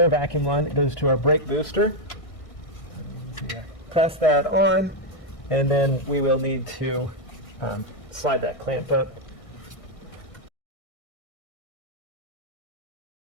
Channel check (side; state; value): right; late; 1.6 ms